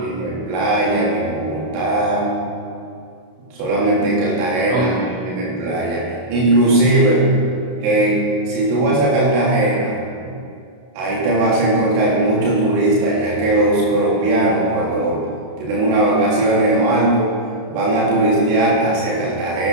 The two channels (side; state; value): left; late; 32 ms